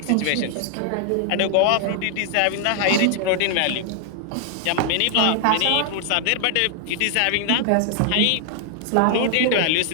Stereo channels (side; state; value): both; different; correlation 0.00